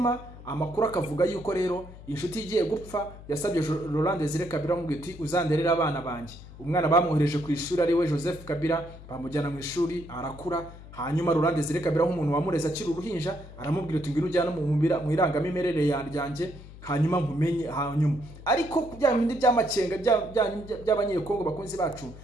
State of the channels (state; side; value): noise; left; hum, 17 dB below the sound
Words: amakuru akavuga yuko rero inshuti igiye gupfa yasabye Laurent Desire Kabila ngo iti uzanderera abana banjye. Umwana bamwohereje ku ishuri ari we Joseph Kabila, bamujyana mu ishuri arakura. Hanyuma Laurent Desire Kabila nk'umuntu wamureza akiri uruhinja aramubwira ati ngwino ujyana mu irangamimerere yanjye, hanyuma nkumenye. Hanyuma ariko bya bindi by'amakenga by'abanyekongo bakunzi bacu